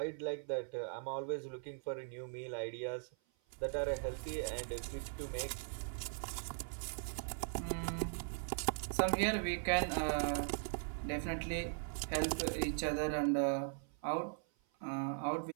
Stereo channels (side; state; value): left; silent; 51 dB below the other